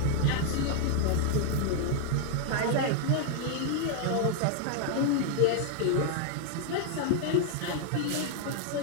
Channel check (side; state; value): both; different; correlation 0.00